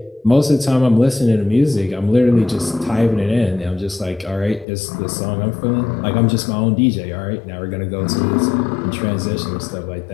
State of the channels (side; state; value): right; drops out; at 4.7 s